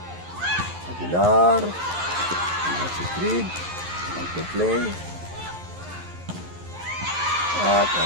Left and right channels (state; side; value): late; left; 11 ms